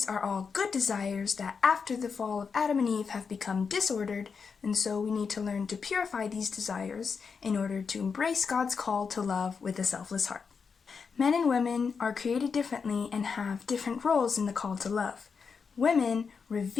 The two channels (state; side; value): quieter; right; 5.6 dB